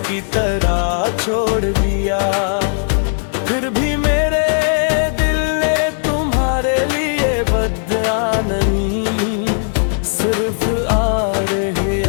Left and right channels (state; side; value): silent; right; digital silence